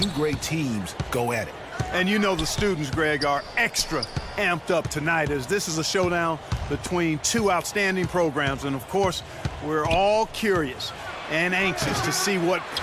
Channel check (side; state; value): both; identical; correlation 1.00